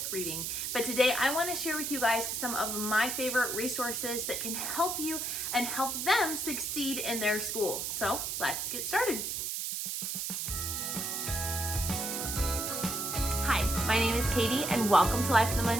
reading, but today I want to share with you guys some of my favorite resources that can help you and help them succeed in their school. So let's get started. Hi, my name is Katie and welcome to Life in the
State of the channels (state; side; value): noise; right; hiss, 2 dB below the sound